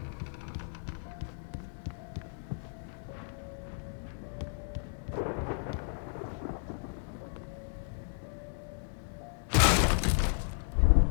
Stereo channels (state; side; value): silent; right; 55 dB below the other